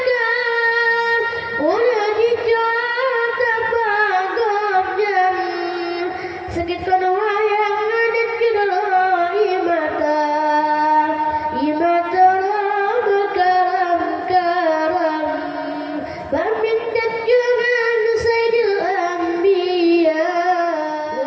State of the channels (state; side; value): identical; both; correlation 1.00